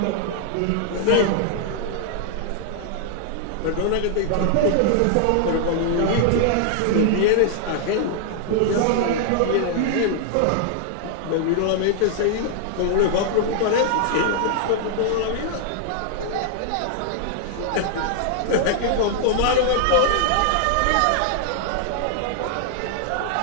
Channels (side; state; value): both; different; correlation -0.01